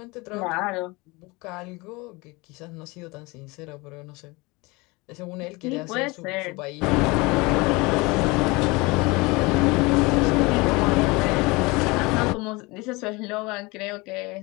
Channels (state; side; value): quieter; right; 24.7 dB